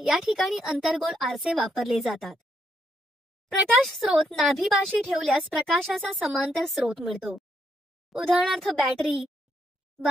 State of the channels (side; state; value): both; normal; correlation 0.76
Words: ठिकाणी अंतर्गोल आरसे वापरले जातात. प्रकाश स्रोत नाभीपाशी ठेवल्यास प्रकाशाचा समांतर स्रोत मिळतो. उदाहरणार्थ बॅटरी,